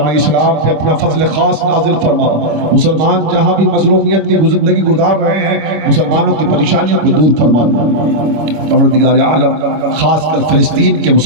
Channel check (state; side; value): late; left; 25 ms